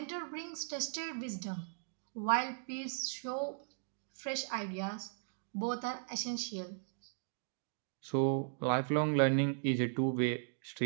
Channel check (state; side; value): silent; left; digital silence